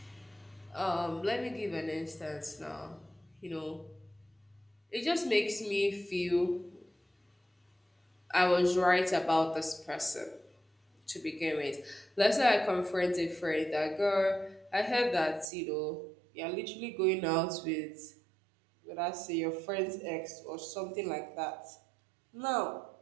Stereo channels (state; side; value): drops out; left; at 15.5 s